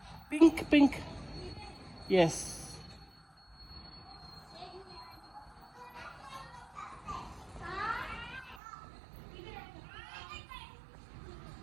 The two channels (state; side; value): drops out; left; at 8.6 s